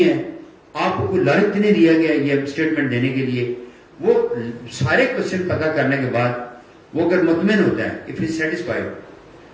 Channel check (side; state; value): both; identical; correlation 1.00